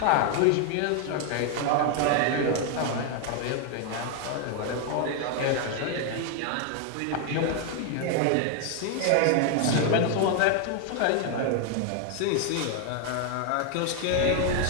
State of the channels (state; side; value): different; both; correlation 0.01